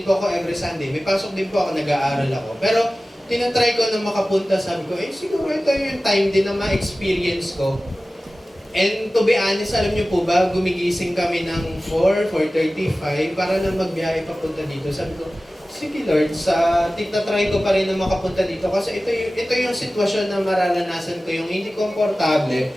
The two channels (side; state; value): both; normal; correlation 0.96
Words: po ako every Sunday. May pasok din po ako, nag-aaral ako. Pero tinatry ko na makapunta, sabi ko, siguro ito yung time din na ma-experience ko. And to be honest, alam niyo po ba, gumigising kami ng 4:35 para na magbiyahe papunta dito. Sabi ko, sige Lord, tinatry ko pa rin na makapunta dito kasi ito yung sitwasyon na mararanasan ko, yung hindi